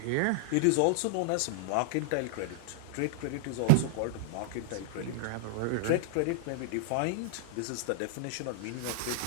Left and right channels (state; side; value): different; both; correlation -0.01